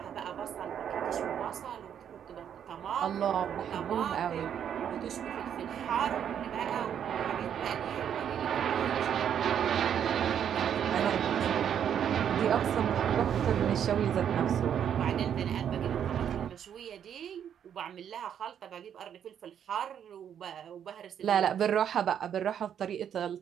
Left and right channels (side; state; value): left; quieter; 8.9 dB